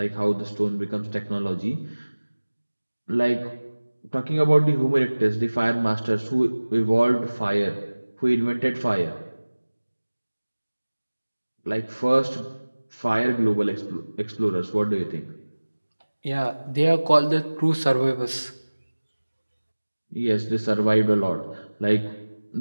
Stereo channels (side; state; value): both; inverted; correlation -1.00